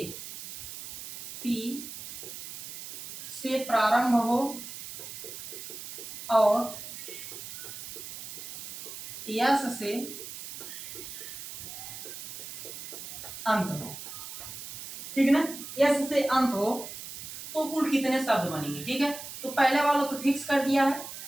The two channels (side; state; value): right; noise; hiss, 10 dB below the sound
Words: से प्रारंभ हो और यस से अंत हो। ठीक है ना, यस से अंत हो तो कुल कितने शब्द बनेंगे। ठीक है, तो पहले वाला तो फिक्स कर दिया है,